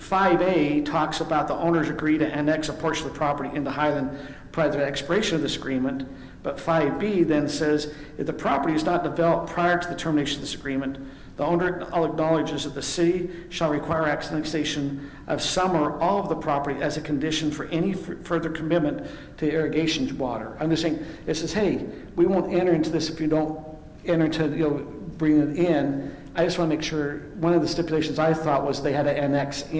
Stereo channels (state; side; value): identical; both; correlation 1.00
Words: 5A talks about the owners agree to annex a portion of the property into Highland prior to the expiration of this agreement. But 5B then says, if the property is not developed prior to the termination of this agreement, the owner acknowledges that the city shall require annexation of some or all of the property as a condition for any further commitment to irrigation water. I'm just saying, it says, hey, we won't enter into this if you don't enter into, bring it in. I just want to make sure, one of the stipulations I thought was they had to annex